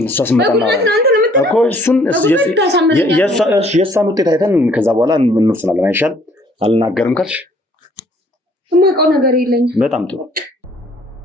እሷ ስመጣና እኮ እሱን የእሷን ውጤት አይተን ከዛ በኋላ እንወስናለን። አይሻል? አልናገርም ካልሽ የማውቀው ነገር የለኝም። በጣም ጥሩ።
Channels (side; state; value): both; normal; correlation 0.60